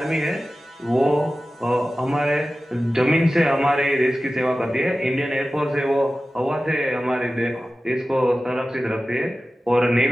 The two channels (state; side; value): normal; both; correlation 0.95